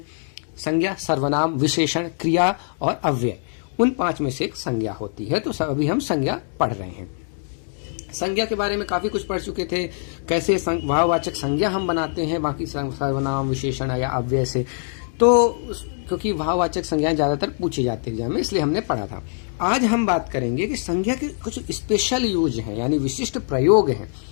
संज्ञा, सर्वनाम, विशेषण, क्रिया और अव्यय। उन 5 में से एक संज्ञा होती है। तो अभी हम संज्ञा पढ़ रहे हैं। संज्ञा के बारे में काफी कुछ पढ़ चुके थे, कैसे भाववाचक संज्ञा हम बनाते हैं बाकी सर्वनाम, विशेषण या अव्यय से। तो क्योंकि भाववाचक संज्ञाएं ज्यादातर पूछी जाती है एग्जाम में, इसलिए हमने पढ़ा था। आज हम बात करेंगे कि संज्ञा के कुछ स्पेशल यूज हैं, यानी विशिष्ट प्रयोग हैं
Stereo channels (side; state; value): right; silent; 63 dB below the other